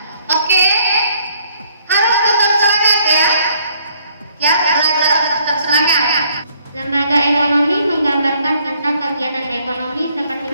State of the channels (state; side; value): inverted; both; correlation -0.65